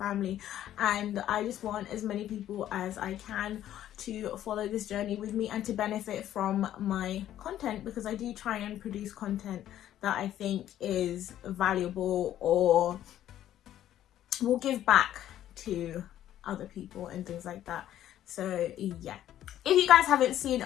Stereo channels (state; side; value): quieter; right; 12.0 dB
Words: And I just want as many people as I can to follow this journey with me and to benefit from my content, because I do try and produce content that I think is valuable or will give back to other people and things like that. So yeah, if you guys haven't seen